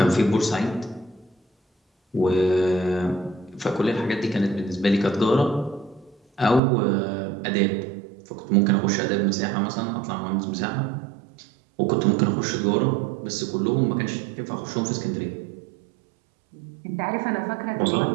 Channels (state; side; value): drops out; left; at 6.6 s